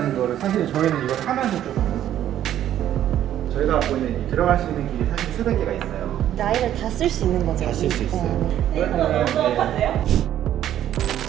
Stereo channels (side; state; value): left; quieter; 11.5 dB